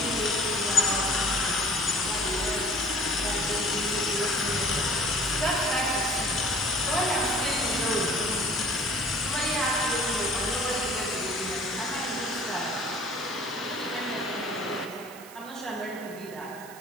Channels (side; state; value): right; noise; hiss, 18 dB below the sound